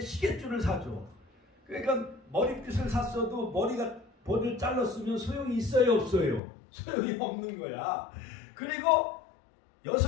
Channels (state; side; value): drops out; right; at 6.4 s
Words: 시계줄을 사줘. 그러니까 머리빗을 샀어도 머리를 잘랐으면 소용이 있어요, 없어요? 소용이 없는 거야. 그리고